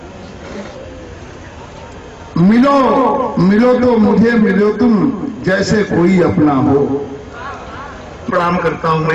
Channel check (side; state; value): both; identical; correlation 1.00